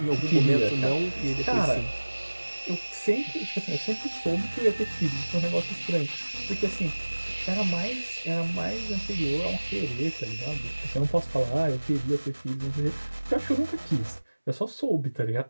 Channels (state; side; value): inverted; both; correlation -1.00